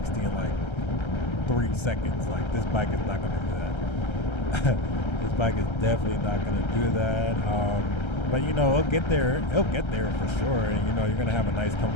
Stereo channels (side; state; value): right; late; 1.3 ms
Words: in like 3 seconds. Like, this bike is not going to do that. This bike is definitely not going to do that. But it'll get there. It'll get there for sure. And you're going to have a nice,